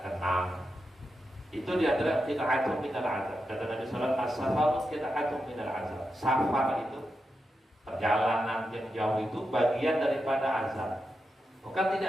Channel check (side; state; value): both; normal; correlation 0.88